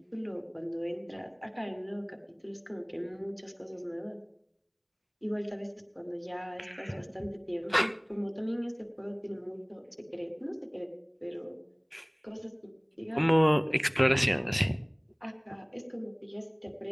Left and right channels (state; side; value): identical; both; correlation 1.00